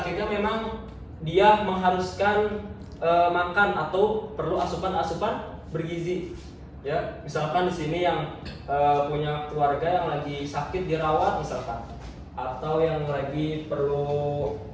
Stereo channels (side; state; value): both; identical; correlation 1.00